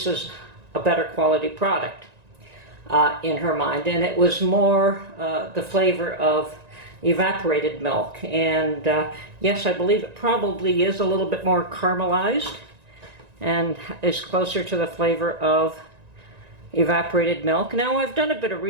a better quality product in her mind. And it was more the flavor of evaporated milk. And yes, I believe it probably is a little bit more caramelized and is closer to the flavor of evaporated milk. Now, I've done a bit of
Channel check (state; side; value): late; left; 1.9 ms